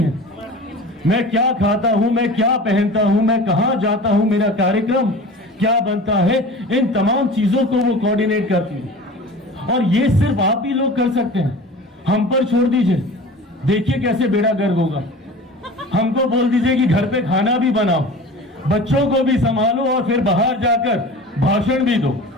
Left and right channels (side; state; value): both; normal; correlation 0.37